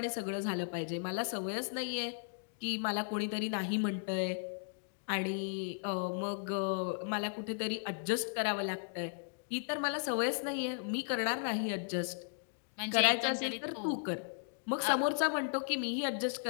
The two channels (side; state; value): right; silent; digital silence